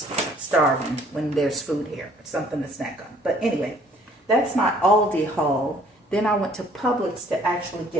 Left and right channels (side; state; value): both; normal; correlation 0.59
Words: starving when there's food here. Something to snack on. But anyway, that's my Aldi haul. Then I went to Publix to actually